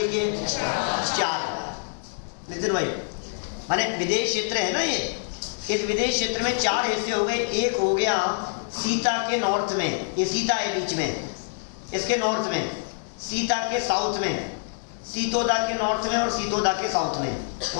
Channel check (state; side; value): silent; right; digital silence